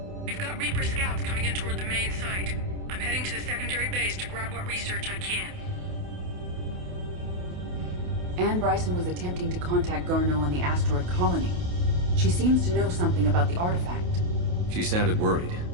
We've got Reaper scouts coming in toward the main site. I'm heading to the secondary base to grab what research I can. Anne Bryson was attempting to contact Garneau on the asteroid colony. She seems to know something about the artifact. She sounded worried.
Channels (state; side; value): late; left; 28 ms